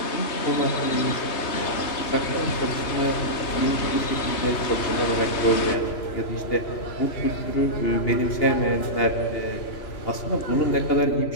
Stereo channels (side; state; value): right; late; 3.0 ms